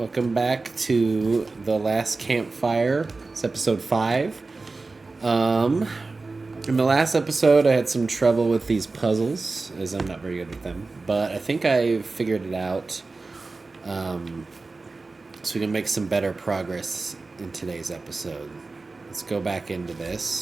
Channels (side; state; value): left; quieter; 3.7 dB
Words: back to the Last Campfire. It's episode 5. In the last episode, I had some trouble with these puzzles, as I'm not very good with them. But I think I figured it out, so we can make some better progress in today's episode. Let's go back into